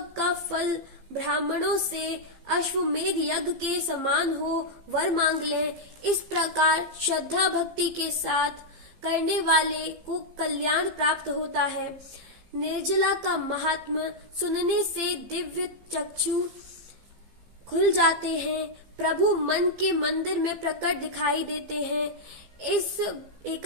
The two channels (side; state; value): left; late; 15 ms